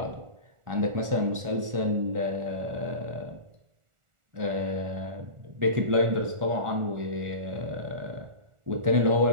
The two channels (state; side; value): late; left; 1.4 ms